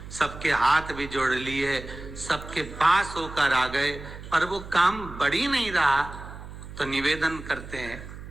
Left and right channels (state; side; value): noise; right; hum, 13 dB below the sound